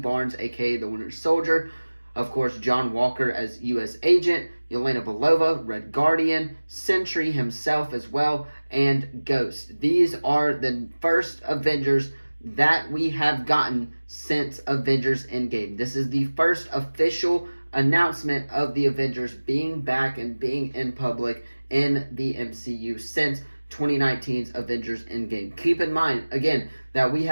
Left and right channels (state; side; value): inverted; both; correlation -1.00